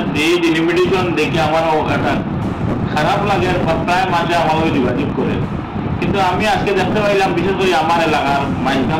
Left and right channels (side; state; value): both; identical; correlation 1.00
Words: এই ডিলিমিটেশন দেখে আমারও একটা খারাপ লাগে আর প্রায় মাঝে আমাকে যোগাযোগ করে। কিন্তু আমি আজকে দেখতে পাইলাম বিশেষ করে আমার এলাকার মাইজগাম